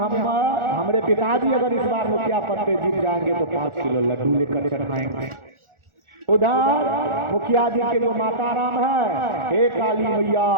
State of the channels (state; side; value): late; left; 1.4 ms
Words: पिताजी अगर इस बार मुखिया पद पे जीत जाएंगे तो 5 किलो लड्डू लेकर चढ़ाएंगे। उधर मुखिया जी के जो माता राम है, हे काली मैया